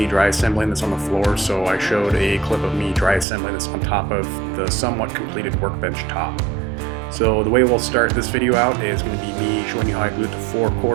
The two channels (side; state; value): left; drops out; at 3.2 s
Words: dry assembling this on the floor, so I showed a clip of me dry assembling this on top of the somewhat completed workbench top. So the way we'll start this video out is going to be me showing you how I glued the 4